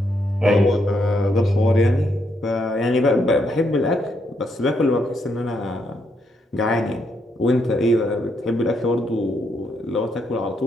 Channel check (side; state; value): both; normal; correlation 0.77